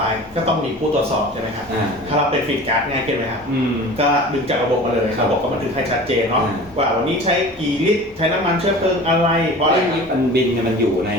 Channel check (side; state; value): both; normal; correlation 0.39